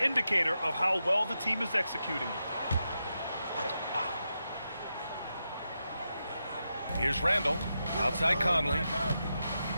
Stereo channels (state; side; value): inverted; both; correlation -0.87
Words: indicator of how well the team is executing. Here's Randall, outside Conley.